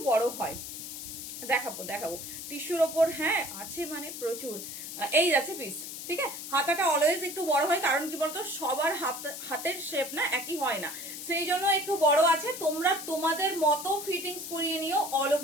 বড় হয়, দেখাবো দেখাবো টিস্যুর ওপর, হ্যাঁ আছে মানে প্রচুর। এই যাচ্ছে পিস, ঠিক আছে, হাতাটা অলওয়েজ একটু বড় হয়, কারণ কি বলতো সবার হাতের শেপ না একই হয় না, সেই জন্য একটু বড় আছে। তোমরা তোমাদের মতো ফিটিংস করিয়ে নিও, অল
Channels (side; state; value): left; noise; hiss, 9 dB below the sound